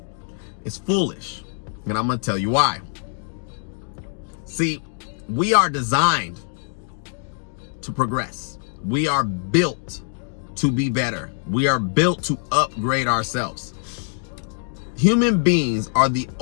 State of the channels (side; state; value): right; silent; digital silence